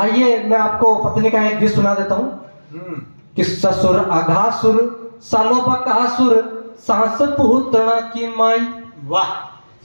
मैं आपको पत्नी का एक गीत सुना देता हूँ कि ससुर अघासुर सालो बकासुर सास पूतना की माई। वाह।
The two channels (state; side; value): inverted; both; correlation -1.00